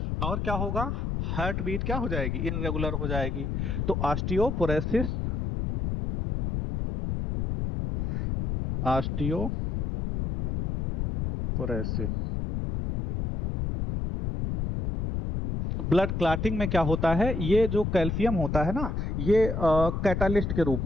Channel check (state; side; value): noise; left; rumble, 1 dB below the sound